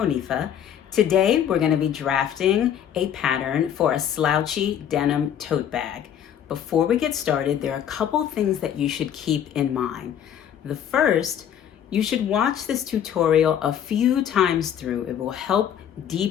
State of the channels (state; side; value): quieter; right; 9.5 dB